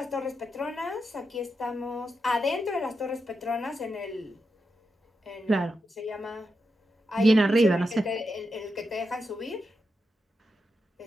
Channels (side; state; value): both; normal; correlation 0.87